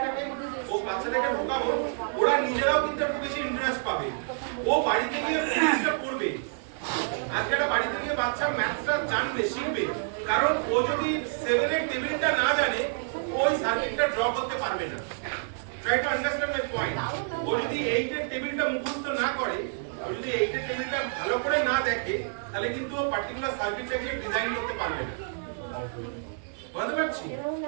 ও বাচ্চাটাকে ঢোকাবো, ওরা নিজেরাও কিন্তু একটু বেশি ইন্টারেস্ট পাবে। ও বাড়িতে গিয়ে ফিজিক্সটা পড়বে, আজকেটা বাড়িতে গিয়ে বাচ্চা ম্যাথসটা জানবে, শিখবে। কারণ ও যদি 7 এর টেবিলটা না জানে, ওই সার্কিটটা ড্র করতে পারবে না। Try to understand my point. ও যদি 8 এর টেবিলটা মুখস্থ না করে, ও যদি 8 এর টেবিলটা ভালো করে না দেখে, তাহলে কিন্তু ও পার্টিকুলার সার্কিটটাকে ডিজাইন করতে পারবে না। বুঝতে পারছি?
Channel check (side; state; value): left; silent; digital silence